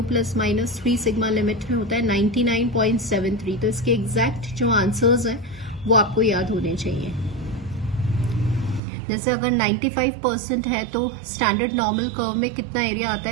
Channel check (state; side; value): drops out; left; at 8.8 s